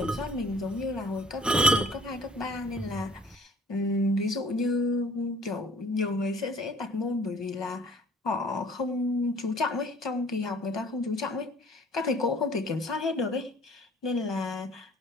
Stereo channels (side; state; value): both; normal; correlation 0.53